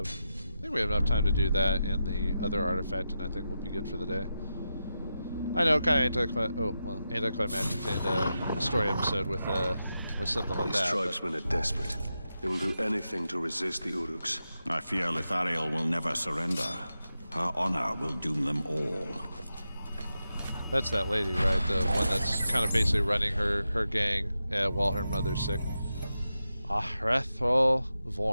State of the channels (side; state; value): both; inverted; correlation -0.89